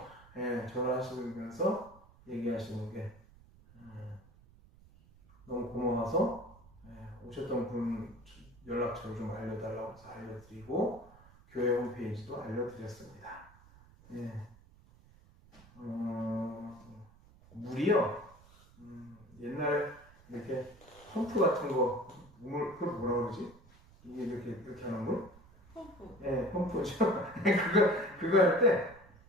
전화하시면서 얘기하시는 게 너무 고마워서 오셨던 분 연락처를 좀 알려달라고 해서 알려드리고 교회 홈페이지도 알려드렸습니다. 물이요. 옛날에 이렇게 펌프 같은 거 그걸 뭐라 그러지? 이게 이렇게 하는 물? 펌프. 펌프죠. 그거 할 때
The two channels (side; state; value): right; noise; rumble, 24 dB below the sound